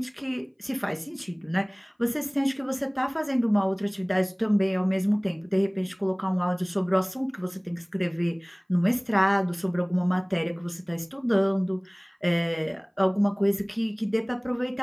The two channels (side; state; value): both; identical; correlation 1.00